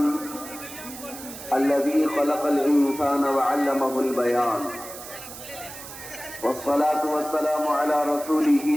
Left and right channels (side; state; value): right; noise; hiss, 13 dB below the sound